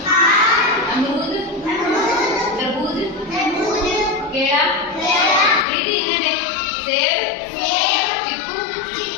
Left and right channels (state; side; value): drops out; right; at 5.7 s